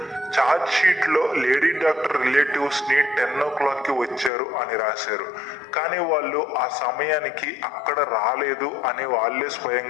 ఛార్జ్ షీట్ లో లేడీ డాక్టర్ రిలేటివ్స్ ని 10 o'clock వచ్చారు అని రాశారు. కానీ వాళ్ళు ఆ సమయానికి అక్కడ రాలేదు అని వాళ్ళే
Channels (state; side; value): drops out; right; at 4.3 s